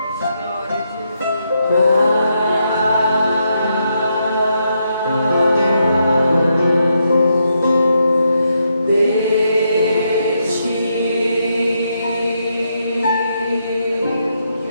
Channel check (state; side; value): inverted; both; correlation -0.80